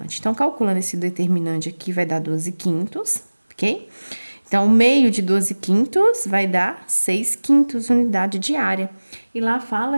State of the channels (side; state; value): both; inverted; correlation -1.00